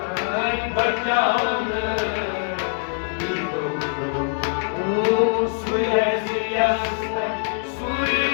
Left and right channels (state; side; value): silent; right; 62 dB below the other